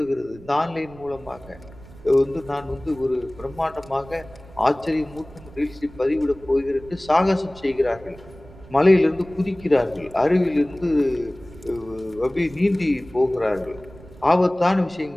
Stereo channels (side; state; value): right; noise; rumble, 20 dB below the sound